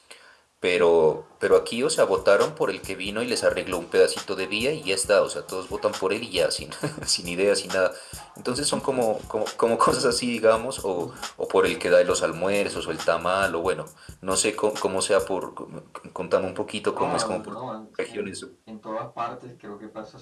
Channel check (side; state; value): both; identical; correlation 1.00